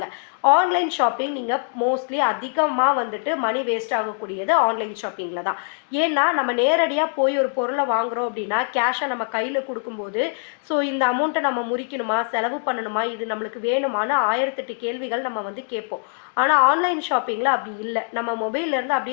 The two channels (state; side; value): silent; right; digital silence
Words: ஆன்லைன் ஷாப்பிங் நீங்கள் மோஸ்ட்லி அதிகமாக வந்துட்டு மணி வேஸ்ட் ஆகக்கூடியது ஆன்லைன் ஷாப்பிங்கில் தான். ஏன்னா நம்ம நேரடியாக போய் ஒரு பொருளை வாங்குகிறோம் அப்படின்னா கேஷை நம்ம கையில் கொடுக்கும்போது ஸோ இந்த அமௌண்ட்டை நம்ம முறிக்கணுமா, செலவு பண்ணணுமா, இது நம்மளுக்கு வேணுமான்னு 1008 கேள்விகள் நம்ம வந்து கேட்போம். ஆனால் ஆன்லைன் ஷாப்பிங்கில் அப்படி இல்லை. நம்ம மொபைல்லேருந்து